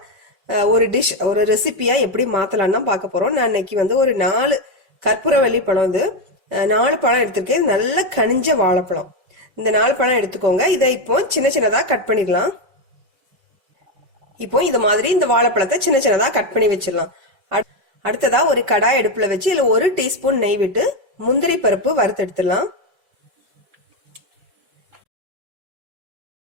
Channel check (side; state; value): left; late; 5.2 ms